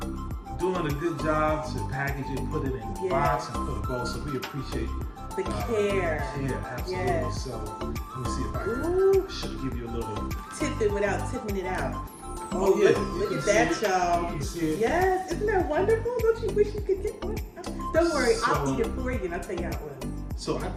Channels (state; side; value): identical; both; correlation 1.00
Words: doing a good job to package it, put it in a box and put a bow. So we appreciate the care. Yeah, absolutely. Yes. So let me see if I can should give you a little tip it without tipping it out. Oh yeah, look at that, y'all. You can see it. Yes, isn't that wonderful? Don't you wish you could get one? Don't worry, I'll eat it for you and I'll tell you how it was. So I